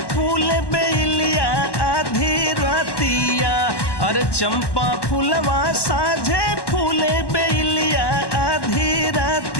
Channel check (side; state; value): right; late; 1.1 ms